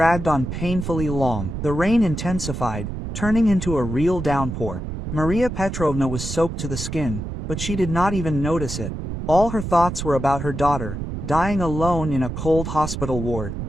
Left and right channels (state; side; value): noise; right; rumble, 6 dB below the sound